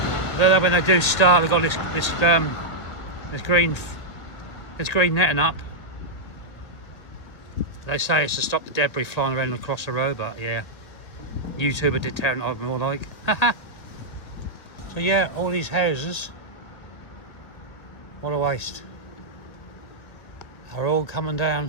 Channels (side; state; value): right; late; 1.8 ms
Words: Though when they do start, they've got this green netting up. They say it's to stop the debris flying around across the road, but yeah, YouTuber did tear it up more like. So yeah, all these houses, what a waste, are all coming